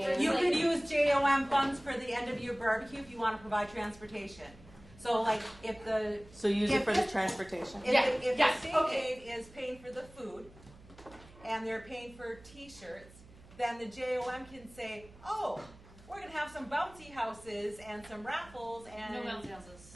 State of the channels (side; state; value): right; noise; hum, 22 dB below the sound